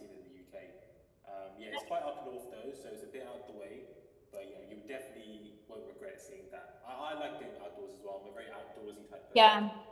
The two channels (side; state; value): both; identical; correlation 1.00